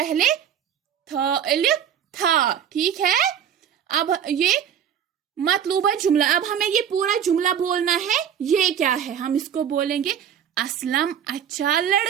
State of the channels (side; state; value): left; quieter; 9.0 dB